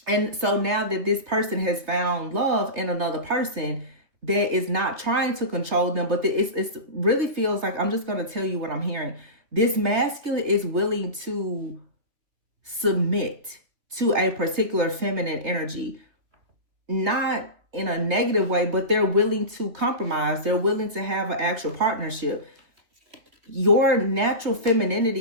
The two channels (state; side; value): late; left; 3.3 ms